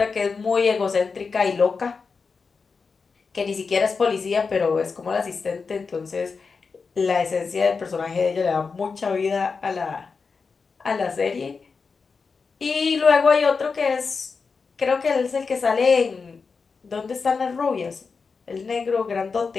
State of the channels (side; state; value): right; quieter; 4.9 dB